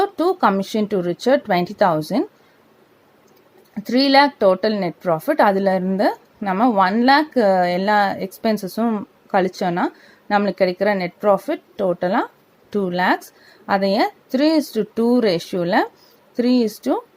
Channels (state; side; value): identical; both; correlation 1.00